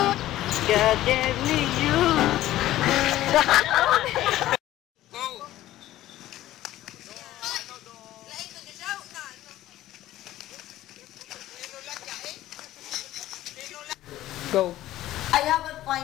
God gave me you. Go. I have a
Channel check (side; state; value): right; quieter; 14.6 dB